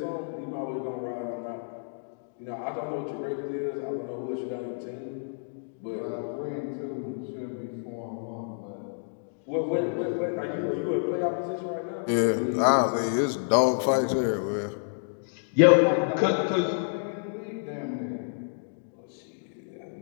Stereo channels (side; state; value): right; silent; digital silence